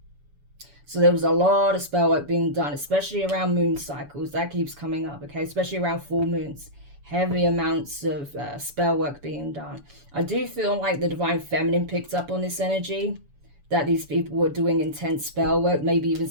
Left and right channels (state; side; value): late; left; 7.0 ms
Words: So there was a lot of spell work being done, especially around moon cycles. That keeps coming up, okay? Especially around full moons. Heavy amounts of spell work being done. I do feel like the divine feminine picked up on this energy, that these people were doing intense spell work, maybe even